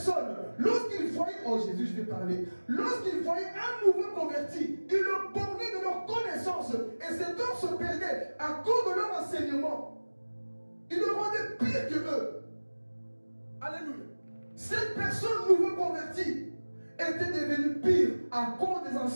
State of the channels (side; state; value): both; inverted; correlation -1.00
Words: lorsqu'ils voyaient, oh Jésus, je vais parler, lorsqu'ils voyaient un nouveau converti, ils le bornaient de leur connaissance, et cet homme se perdait à cause de leur enseignement. Ils le rendaient pire que eux. Alléluia. Cette personne nouveau convertie était devenue pire à cause des